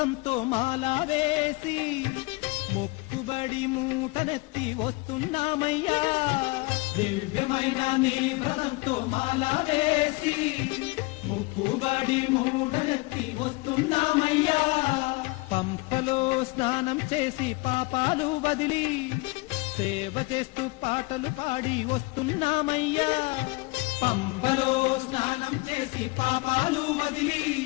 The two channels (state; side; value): quieter; right; 24.4 dB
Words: మాలా వేసి మొక్కుబడి మూటనెత్తి వస్తున్నామయ్యా దివ్యమైన నీ వ్రతంతో మాలా వేసి మొక్కుబడి మూటనెత్తి వస్తున్నామయ్యా పంపలో స్నానం చేసి పాపాలు వదిలి సేవ చేస్తూ పాటలు పాడి వస్తున్నామయ్యా పంపలో స్నానం చేసి పాపాలు వదిలి